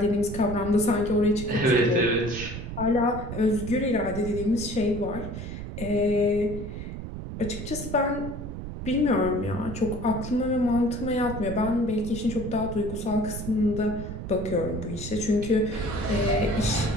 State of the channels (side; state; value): right; noise; rumble, 8 dB below the sound